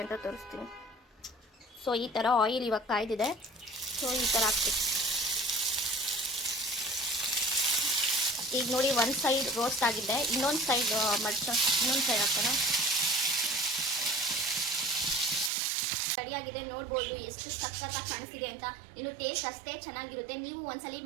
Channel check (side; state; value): left; drops out; at 15.5 s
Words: ಅಂತ ತೋರಿಸ್ತೀನಿ. ಸೊ ಈ ಥರ ಆಯಿಲ್ ಇವಾಗ ಕಾಯ್ದಿದೆ. ಸೊ ಈ ಥರ ಹಾಕ್ತೀನಿ. ಈಗ ನೋಡಿ ಒಂದು ಸೈಡ್ ರೋಸ್ಟ್ ಆಗಿದೆ. ಇನ್ನೊಂದು ಸೈಡ್ ಇನ್ನೊಂದು ಸೈಡ್ ಹಾಕೋಣ. ರೆಡಿಯಾಗಿದೆ ನೋಡ್ಬೋದು ಎಷ್ಟು ಸಖತ್ತಾಗಿ ಕಾಣಿಸ್ತಿದೆ ಅಂತ. ಇನ್ನು ಟೇಸ್ಟ್ ಅಷ್ಟೇ ಚೆನ್ನಾಗಿರುತ್ತೆ. ನೀವು ಒಂದ್ಸಲಿ